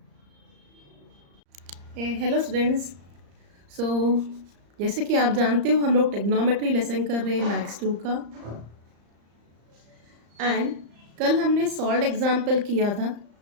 Hello students. So जैसे कि आप जानते हो हम लोग टेक्नोमेट्री लेसन कर रहे हैं मैथ्स 2 का। एंड कल हमने सॉल्व एग्जाम्पल किया था।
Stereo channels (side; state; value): left; late; 34 ms